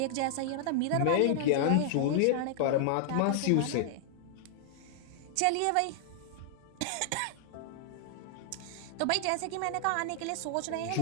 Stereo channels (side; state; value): both; different; correlation -0.01